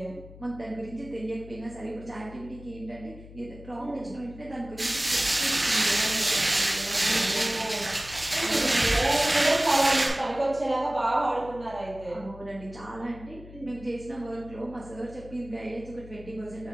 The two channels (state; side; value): noise; left; hum, 17 dB below the sound